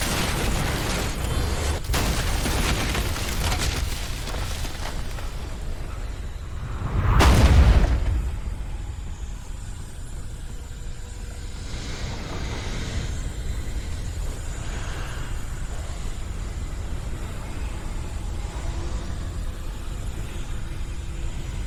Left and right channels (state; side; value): identical; both; correlation 1.00